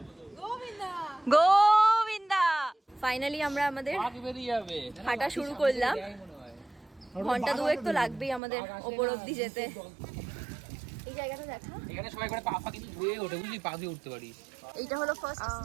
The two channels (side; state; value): left; drops out; at 8.4 s